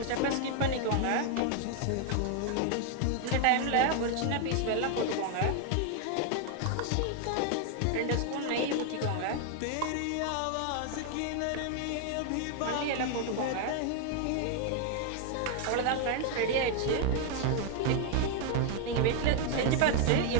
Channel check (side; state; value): both; different; correlation 0.00